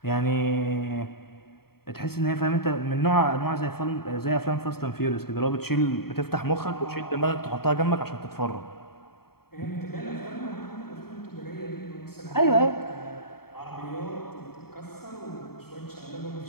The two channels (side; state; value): right; late; 0.95 ms